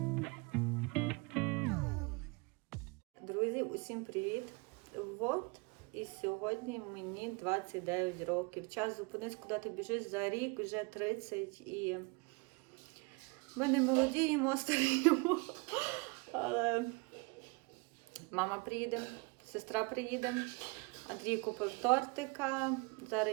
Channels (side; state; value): left; quieter; 28.7 dB